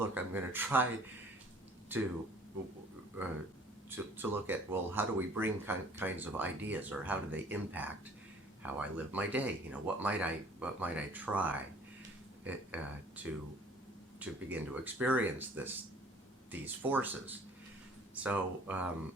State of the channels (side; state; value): both; normal; correlation 0.53